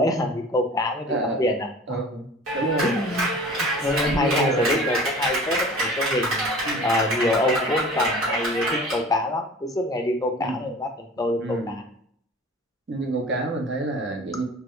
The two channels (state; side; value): normal; both; correlation 0.42